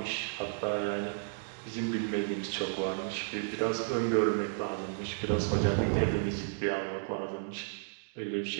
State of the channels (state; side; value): silent; left; digital silence